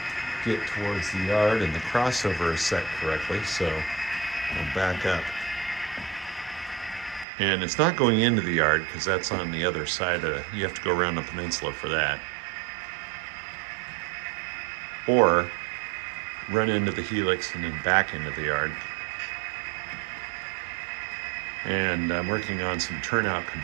get towards the yard, and the crossover is set correctly, so I'll back up. And it's not going into the yard because that's on the other side you have to go around the peninsula for that. Or run into the Helix and then back into the yard. And I'm working on some turnout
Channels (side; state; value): left; drops out; at 7.2 s